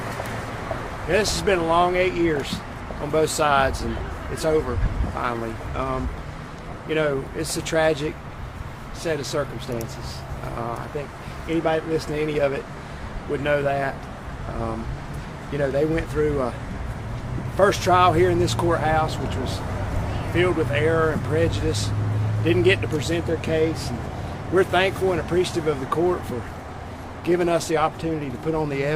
this has been a long 8 years on both sides, and it's over finally. You know, it's a tragic set of circumstances. I think anybody that listened to any of it would know that. You know, they went through a first trial here in this courthouse, which was filled with error and prejudice, didn't get to present their case. And we're thankful and appreciative of the court for giving us the opportunity to put on the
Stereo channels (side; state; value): both; identical; correlation 1.00